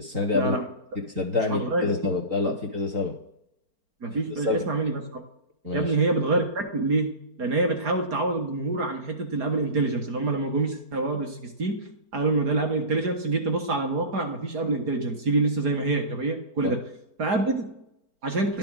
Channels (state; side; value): late; left; 4.4 ms